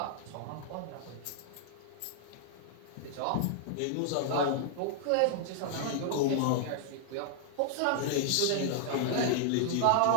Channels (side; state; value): both; different; correlation -0.01